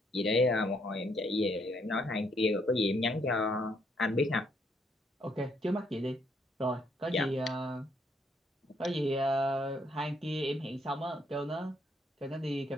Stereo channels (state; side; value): normal; both; correlation 0.71